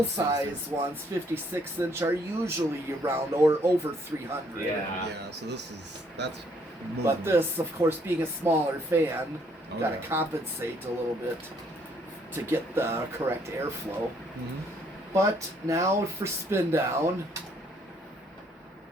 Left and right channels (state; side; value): normal; both; correlation 0.67